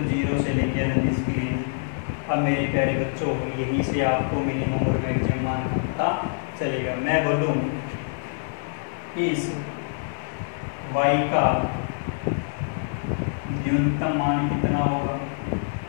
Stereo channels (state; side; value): silent; right; 61 dB below the other